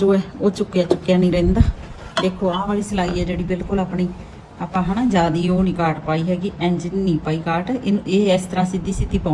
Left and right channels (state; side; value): identical; both; correlation 1.00